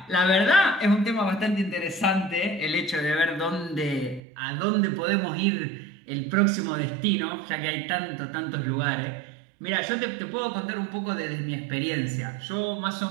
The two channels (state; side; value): drops out; left; at 4.2 s